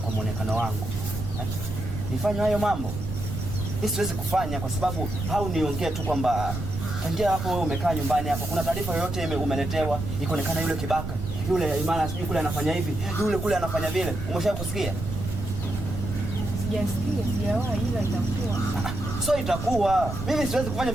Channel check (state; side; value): noise; right; rumble, 6 dB below the sound